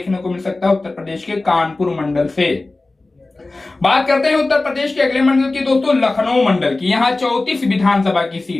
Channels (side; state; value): right; quieter; 3.2 dB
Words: को मिल सकता है उत्तर प्रदेश के कानपुर मंडल से। बात करते हैं उत्तर प्रदेश के अगले मंडल की दोस्तों, लखनऊ मंडल की। यहां 34 विधानसभा की